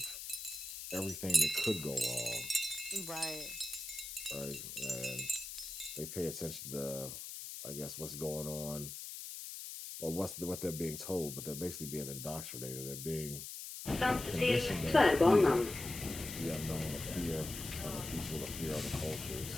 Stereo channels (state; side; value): noise; left; hiss, 8 dB below the sound